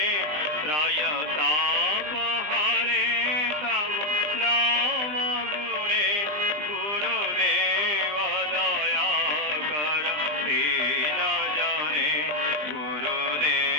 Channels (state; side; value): late; left; 20 ms